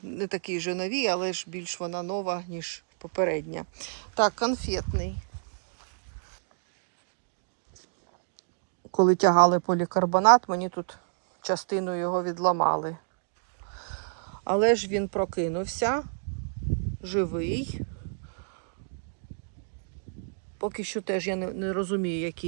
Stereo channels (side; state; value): left; silent; digital silence